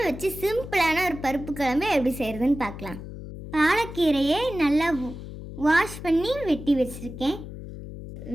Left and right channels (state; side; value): noise; left; hum, 11 dB below the sound